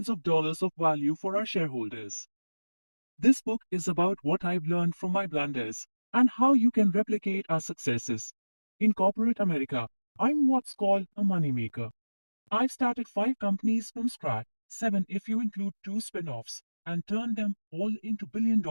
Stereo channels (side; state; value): both; inverted; correlation -1.00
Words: of dollars of value for our shareholders. This book is about what I've learned from my blunders and how you can replicate our successes. In corporate America, I'm what's called a moneymaker. I've started 5 companies from scratch, 7 if you include 2 spin-offs, and turned them all into